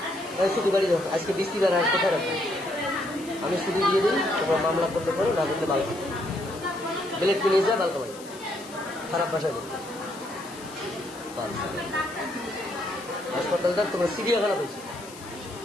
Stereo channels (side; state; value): left; noise; hiss, 18 dB below the sound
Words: ছুটি বাড়ি দাও আজকে বৃষ্টিবার আজ কোথায় রাখবো আমি ছুটি দিয়ে দিই তোমার মামলা করতে পারো না করলে বালকা বেলেট নিয়ে যা বালকা বাড়ি খারাপ ভাষায় বলবে হাসপাতালটা তোমার চিড়িয়াখানা পেয়েছি